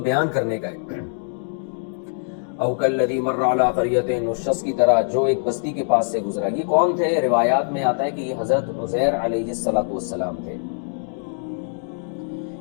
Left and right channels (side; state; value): right; silent; digital silence